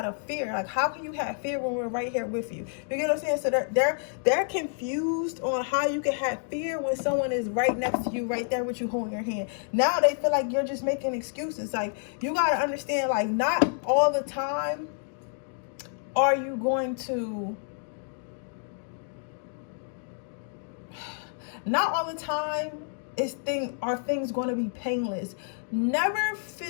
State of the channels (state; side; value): silent; right; 59 dB below the other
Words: of fear. Like, how can you have fear when we're right here with you? You get what I'm saying? So they're confused on how you can have fear when someone is right next to you, right there with you, holding your hand. Now they feel like you're just making excuses. Like, you got to understand, like, not all the time are you going to Not all the time are things going to be painless. Never